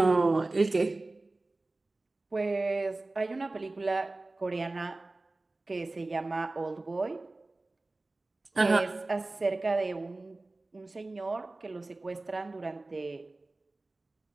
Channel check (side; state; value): left; quieter; 3.1 dB